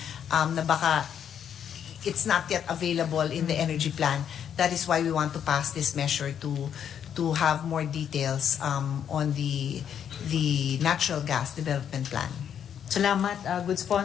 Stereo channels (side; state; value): right; quieter; 8.8 dB